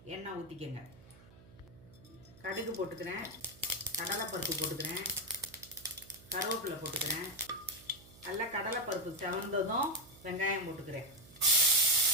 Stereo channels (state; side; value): noise; right; hum, 22 dB below the sound